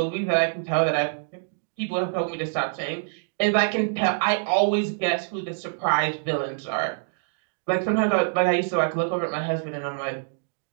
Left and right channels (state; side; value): silent; left; digital silence